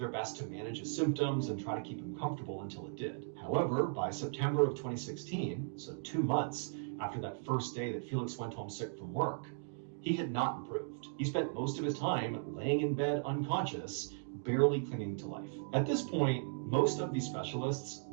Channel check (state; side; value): silent; left; digital silence